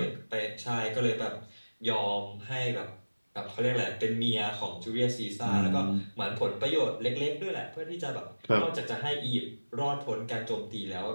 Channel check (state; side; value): inverted; both; correlation -1.00